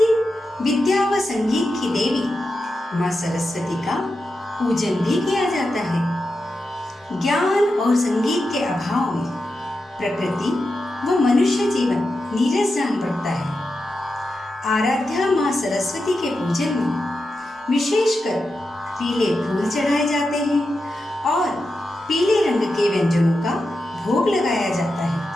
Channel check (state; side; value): normal; both; correlation 0.89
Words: विद्या व संगीत की देवी माँ सरस्वती का पूजन भी किया जाता है। ज्ञान और संगीत के अभाव में प्रकृति व मनुष्य जीवन नीरस जान पड़ता है। आराध्या माँ सरस्वती के पूजन में विशेषकर पीले फूल चढ़ाए जाते हैं और पीले रंग के व्यंजनों का भोग लगाया जाता है।